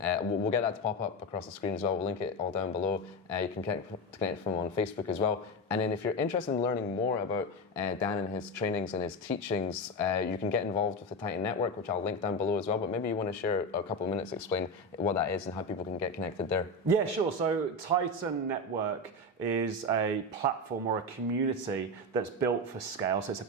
We'll get that to pop up across the screen as well. We'll link it all down below. You can connect with him on Facebook as well. And then if you're interested in learning more about Dan and his trainings and his teachings, you can get involved with the Titan Network, which I'll link down below as well. But maybe you want to share a couple of minutes to explain what that is and how people can get connected there. Yeah, sure. So Titan Network is a platform or a community that's built for scale. So it's a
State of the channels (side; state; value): both; normal; correlation 0.17